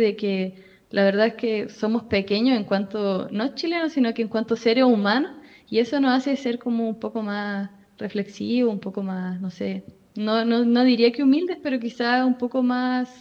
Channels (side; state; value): both; identical; correlation 1.00